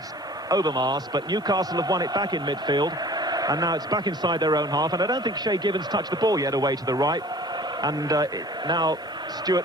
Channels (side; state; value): both; normal; correlation 0.47